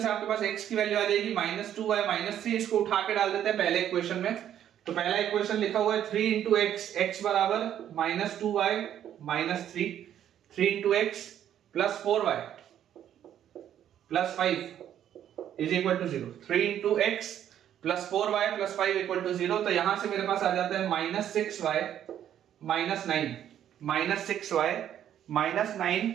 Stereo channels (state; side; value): quieter; left; 10.5 dB